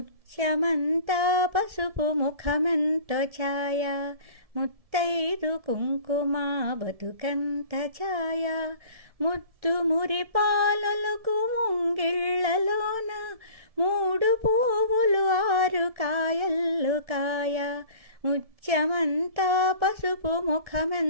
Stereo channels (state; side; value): late; left; 1.7 ms